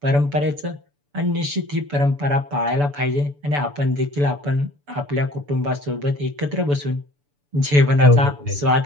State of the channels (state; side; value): late; left; 6.9 ms